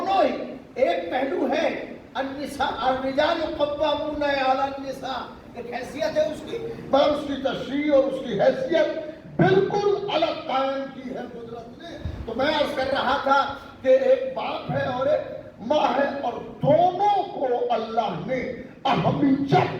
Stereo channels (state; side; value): identical; both; correlation 1.00